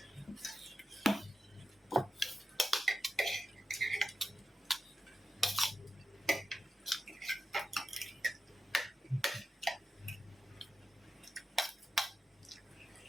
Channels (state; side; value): normal; both; correlation 0.91